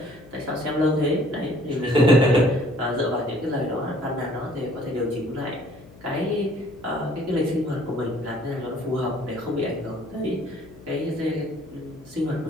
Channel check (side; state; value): left; noise; hum, 22 dB below the sound